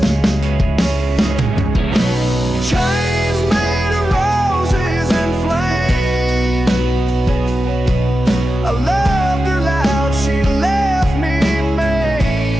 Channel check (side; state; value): both; normal; correlation 0.91